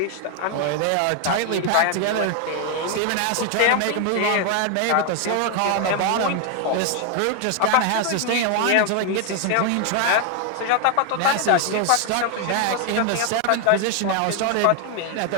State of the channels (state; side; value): different; both; correlation 0.00